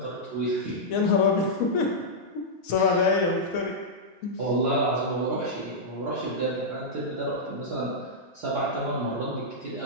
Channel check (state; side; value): normal; both; correlation -0.09